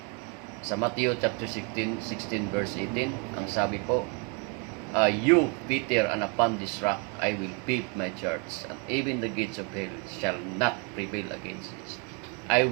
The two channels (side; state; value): left; quieter; 33.6 dB